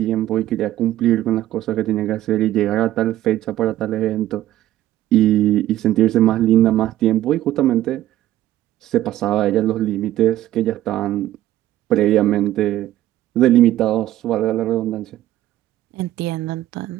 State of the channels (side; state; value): left; quieter; 13.9 dB